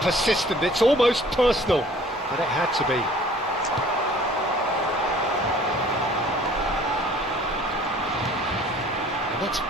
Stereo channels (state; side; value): normal; both; correlation 0.52